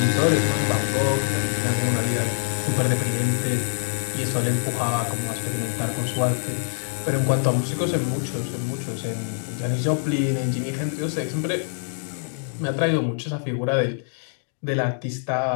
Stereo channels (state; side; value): silent; right; digital silence